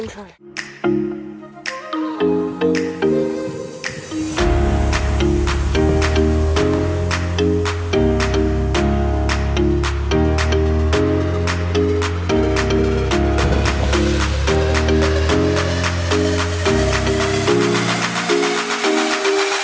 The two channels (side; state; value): both; identical; correlation 1.00